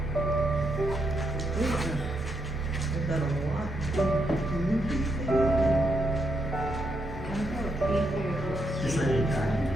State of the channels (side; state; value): right; noise; rumble, 18 dB below the sound